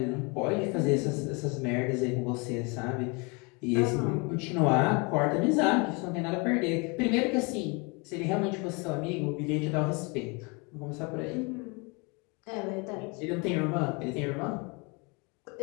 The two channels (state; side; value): quieter; right; 30.2 dB